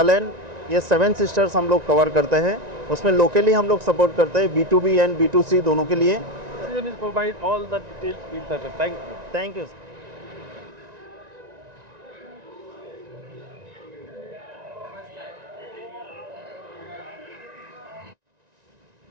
ये 7 सिस्टर्स हम लोग कवर करते हैं। उसमें लोकली हम लोग सपोर्ट करते हैं B2B एंड B2C दोनों के लिए। Provide all the details. Thank you. Thank you.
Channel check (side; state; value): left; late; 1.9 ms